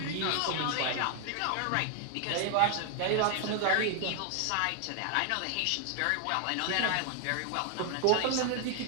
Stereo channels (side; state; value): both; different; correlation 0.00